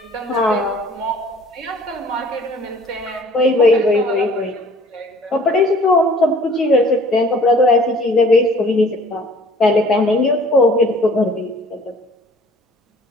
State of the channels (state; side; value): normal; both; correlation 0.52